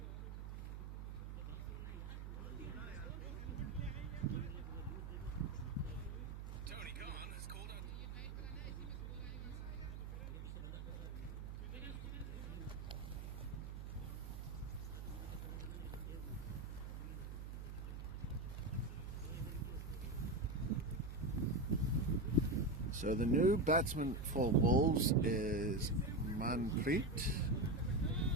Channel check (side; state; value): right; noise; hum, 7 dB below the sound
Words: So the new batsman for Wolves is Manpreet.